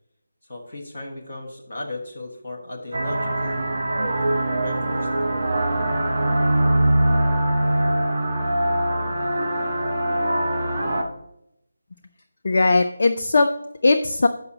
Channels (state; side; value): inverted; both; correlation -0.93